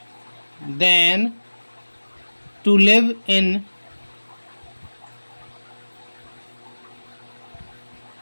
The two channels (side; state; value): both; inverted; correlation -1.00